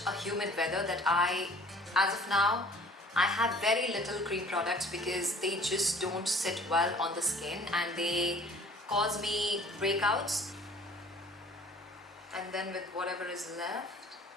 a humid weather that as of now, I have very little cream products because they just don't sit well on the skin and they cause me breakouts. And then with whatever is left,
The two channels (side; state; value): both; normal; correlation 0.52